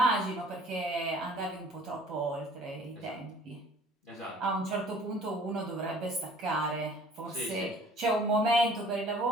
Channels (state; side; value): normal; both; correlation 0.52